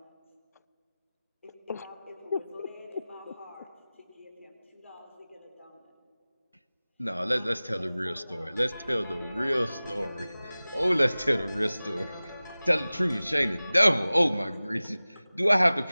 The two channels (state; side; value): inverted; both; correlation -0.98